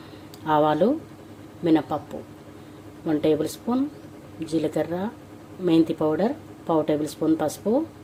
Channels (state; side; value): identical; both; correlation 1.00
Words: ఆవాలు, మినపప్పు 1 టేబుల్ స్పూన్, జీలకర్ర, మెంతి పౌడర్ 1/2 టేబుల్ స్పూన్, పసుపు,